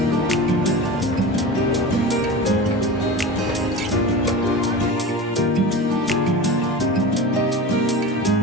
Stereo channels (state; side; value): normal; both; correlation 0.30